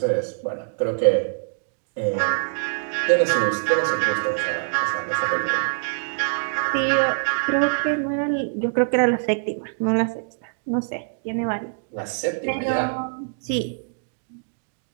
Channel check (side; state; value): left; silent; digital silence